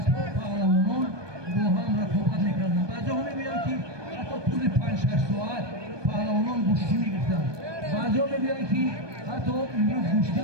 پهلوانان با هم رقابت می‌کردند. بعضی‌ها می‌گویند که حتی طول 5-6 ساعت پهلوانان گوشتی می‌گرفتند. بعضی‌ها می‌گویند که حتی امروز گوشتی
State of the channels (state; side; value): late; left; 1.2 ms